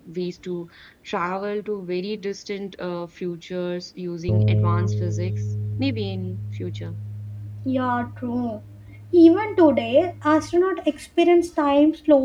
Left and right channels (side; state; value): both; identical; correlation 1.00